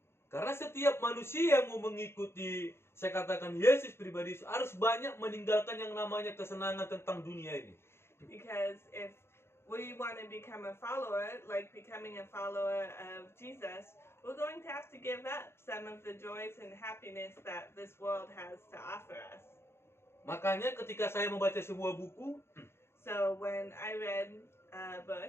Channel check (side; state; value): right; late; 0.12 ms